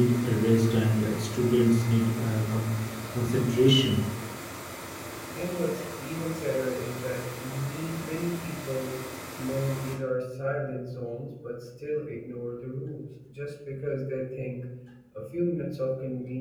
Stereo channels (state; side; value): identical; both; correlation 1.00